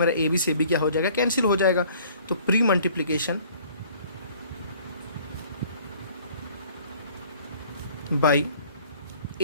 ए बी से बी क्या हो जाएगा? कैंसिल हो जाएगा। तो pre multiplication by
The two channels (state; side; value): inverted; both; correlation -0.54